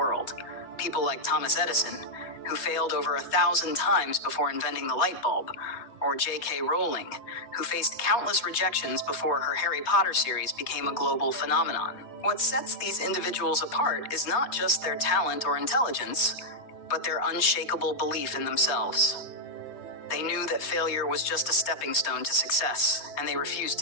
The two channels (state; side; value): late; right; 3.2 ms